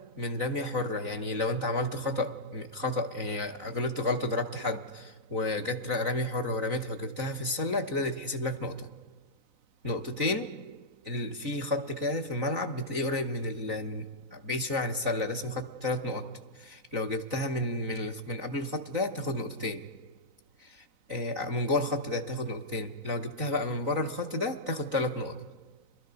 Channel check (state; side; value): late; left; 3.9 ms